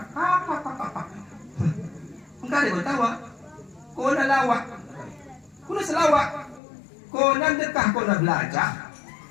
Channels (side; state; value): right; drops out; at 6.6 s